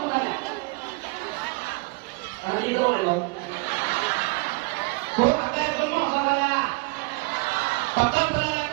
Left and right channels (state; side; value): quieter; left; 27.3 dB